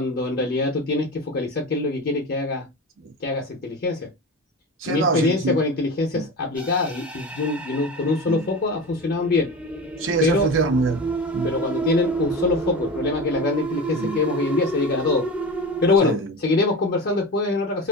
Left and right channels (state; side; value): normal; both; correlation 0.28